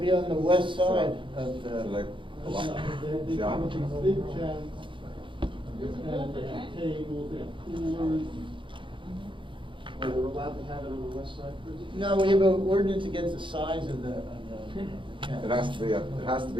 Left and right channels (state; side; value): late; left; 0.24 ms